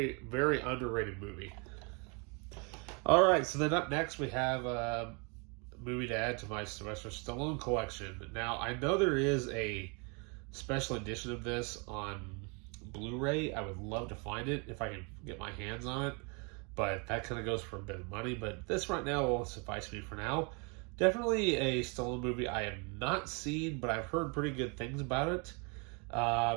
very underrated movie. All right, so then up next we have a movie to add to my Sylvester Stallone collection. Now, I know there is a special edition of this on Blu-ray. I would love to find it if I can get my hands on it, but that kind of goes for a bit of money. But this right now will suffice me for now. Definitely a Stallone movie I have not seen, but I've heard pretty good things about it.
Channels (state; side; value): quieter; left; 33.1 dB